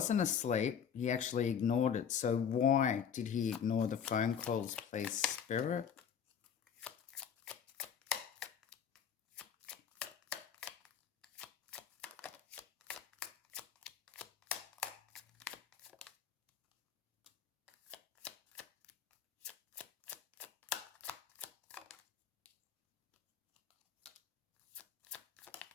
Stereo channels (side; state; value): right; quieter; 7.8 dB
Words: asleep. He actually ignored it. So why did he ignore the phone calls, please, Spirit?